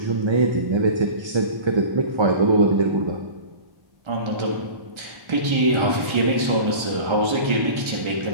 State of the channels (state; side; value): late; left; 1.3 ms